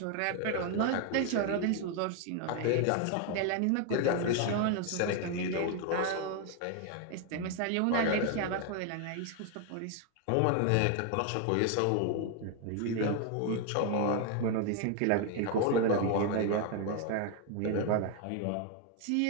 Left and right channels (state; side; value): different; both; correlation 0.01